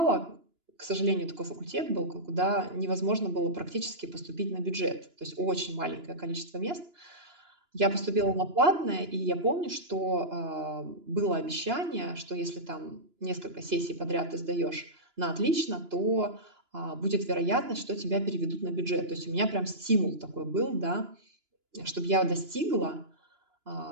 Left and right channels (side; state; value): left; late; 2.9 ms